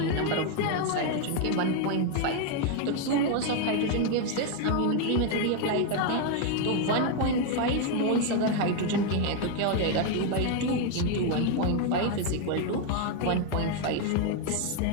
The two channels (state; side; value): different; both; correlation 0.01